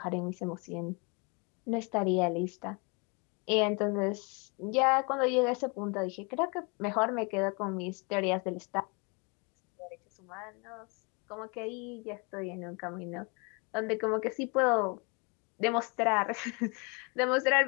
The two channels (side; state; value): right; quieter; 31.8 dB